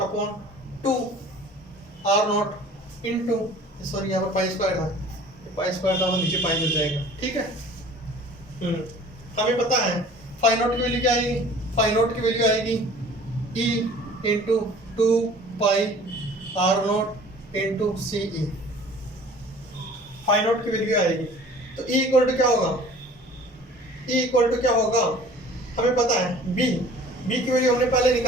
upon 2 R naught into, sorry यहाँ पर पाई स्क्वायर था, पाई स्क्वायर था तो नीचे पाई मिल जाएगा, ठीक है। हमें पता है फाई नॉट की वैल्यू क्या आएगी, फाई नॉट की वैल्यू आएगी E into 2 pi R naught into C E, phi naught की वैल्यू आएगी। तो E इक्वल टू क्या होगा, E इक्वल टू क्या होगा, हमें पता है B की वैल्यू हमने पहले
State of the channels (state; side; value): normal; both; correlation 0.47